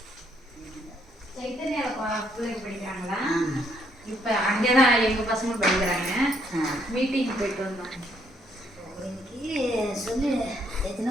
இப்போ அங்கே தான் எங்கள் பசங்க படிக்கிறாங்க. மீட்டிங் போயிட்டு வந்தோம். இன்னைக்கு சொல்லி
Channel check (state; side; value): normal; both; correlation 0.70